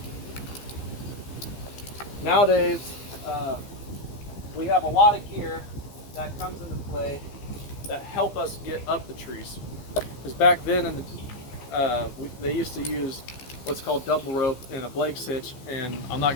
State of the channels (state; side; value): late; right; 15 ms